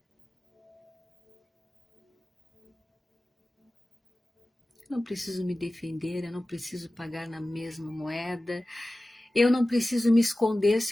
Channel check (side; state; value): both; normal; correlation 0.96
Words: Eu não preciso me defender, eu não preciso pagar na mesma moeda, eu não preciso me esconder